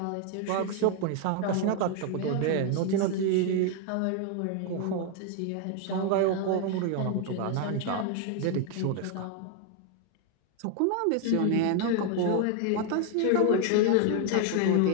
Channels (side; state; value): both; different; correlation 0.01